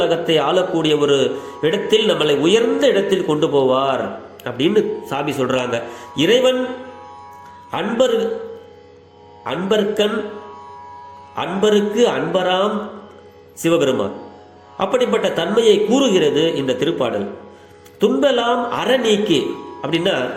ஆளக்கூடிய ஒரு இடத்தில், நம்மளை உயர்ந்த இடத்தில் கொண்டு போவார் அப்படின்னு சாமி சொல்றாங்க. இறைவன் அன்பர்கண் அன்பருக்கு அன்பராம் சிவபெருமான். அப்படிப்பட்ட தன்மையை கூறுகிறது இந்த திருப்பாடல். துன்பெல்லாம் அற நீக்கி அப்படின்னா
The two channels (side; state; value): both; identical; correlation 1.00